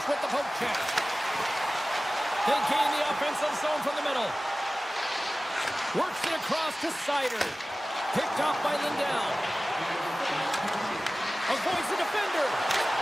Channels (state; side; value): normal; both; correlation 0.97